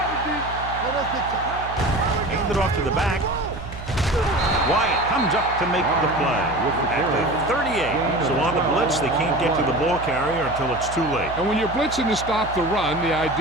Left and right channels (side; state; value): right; noise; hum, 11 dB below the sound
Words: Hand it off to the back. Wyatt comes up to make the play at the 38. So on the blitz, they can't get to the ball carrier until it's too late. And when you're blitzing to stop the run, the